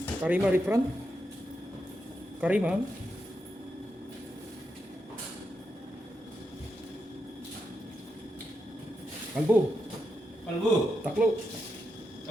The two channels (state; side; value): normal; both; correlation 0.85